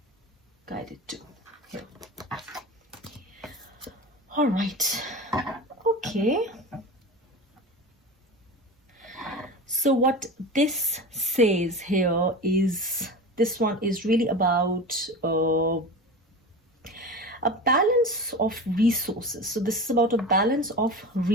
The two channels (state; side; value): normal; both; correlation 0.30